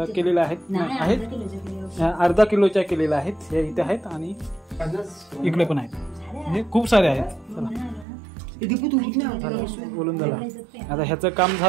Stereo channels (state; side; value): drops out; left; at 8.1 s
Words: केलेल्या आहेत, अर्धा किलोच्या केलेल्या आहेत. हे इथे आहेत आणि इकडे पण आहेत, म्हणजे खूप सारे आहेत. बोलून झालं. आता ह्याचं काम